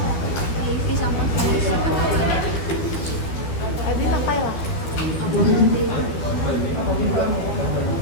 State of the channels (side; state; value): right; late; 12 ms